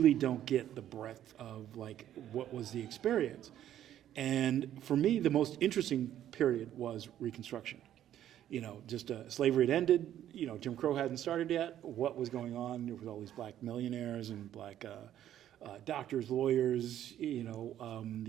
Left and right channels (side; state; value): left; quieter; 11.5 dB